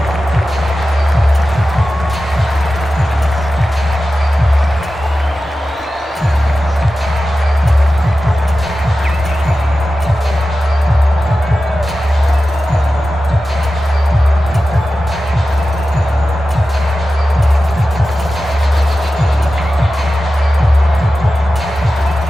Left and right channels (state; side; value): normal; both; correlation 0.94